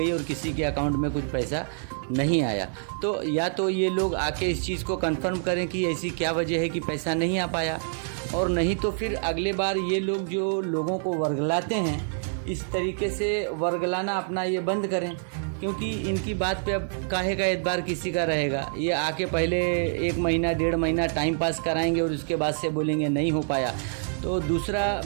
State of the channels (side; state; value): left; silent; digital silence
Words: और किसी के अकाउंट में कुछ पैसा नहीं आया। तो या तो ये लोग आके इस चीज़ को कंफर्म करें कि ऐसी क्या वजह है कि पैसा नहीं आ पाया, और नहीं तो फिर अगले बार ये लोग जो लोगों को वर्गलाते हैं इस तरीके से वर्गलाना अपना ये बंद करें, क्योंकि इनकी बात पे अब काहे का एतबार किसी का रहेगा। ये आके पहले 1 महीना 1.5 महीना टाइम पास कराएंगे और उसके बाद से बोलेंगे नहीं हो पाया। तो दूसरा,